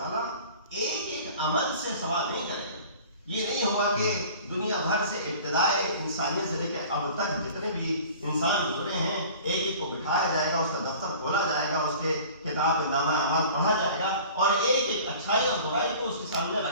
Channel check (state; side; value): inverted; both; correlation -0.44